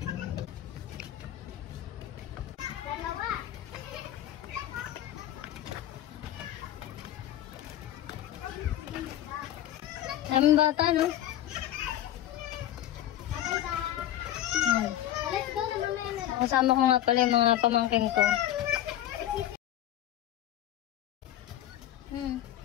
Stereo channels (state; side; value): quieter; right; 12.5 dB